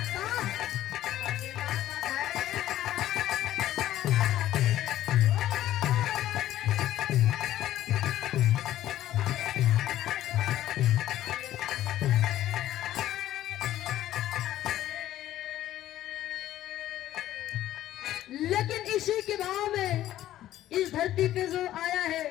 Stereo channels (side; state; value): right; quieter; 13.3 dB